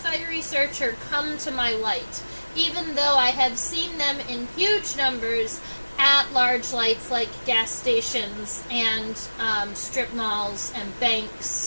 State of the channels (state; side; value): inverted; both; correlation -1.00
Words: searcher come to my light, even though I have seen them in huge numbers at large lights like gas stations and strip malls and